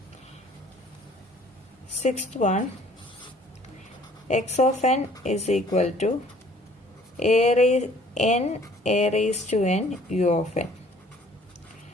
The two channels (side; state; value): both; normal; correlation 0.55